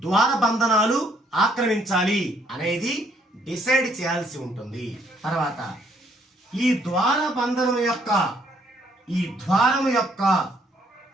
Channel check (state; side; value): normal; both; correlation 0.68